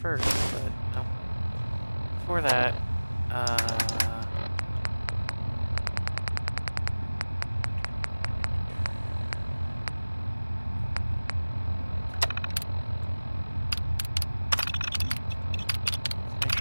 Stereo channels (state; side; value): inverted; both; correlation -1.00